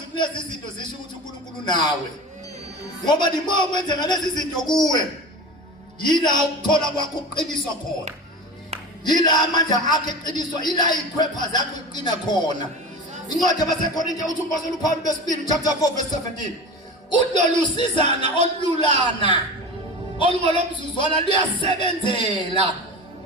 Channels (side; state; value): both; normal; correlation 0.31